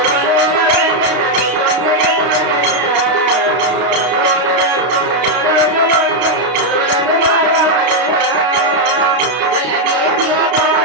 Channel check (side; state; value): left; late; 32 ms